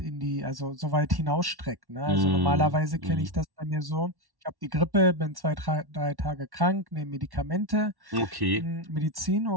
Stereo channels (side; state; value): left; late; 1.1 ms